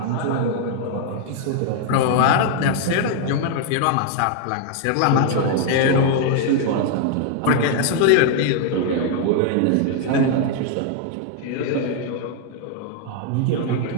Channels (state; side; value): different; both; correlation 0.00